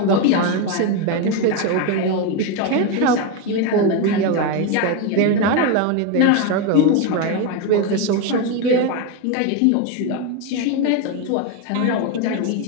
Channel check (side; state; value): both; different; correlation 0.03